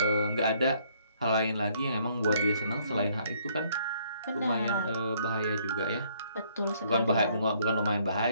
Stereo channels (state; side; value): inverted; both; correlation -0.65